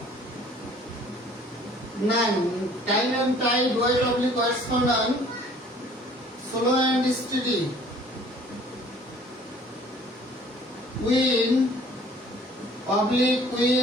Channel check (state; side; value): normal; both; correlation 0.54